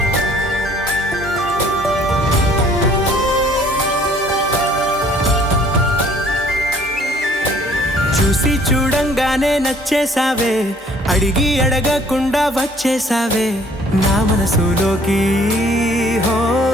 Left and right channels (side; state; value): both; normal; correlation 0.57